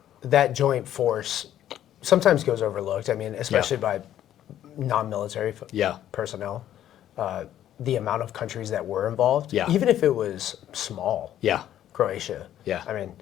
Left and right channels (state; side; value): quieter; right; 11.6 dB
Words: that joint force. Sometimes goes overlooked. I mean, especially by non-military personnel. The amount of countries that were involved, even if it was small. Croatia. I mean,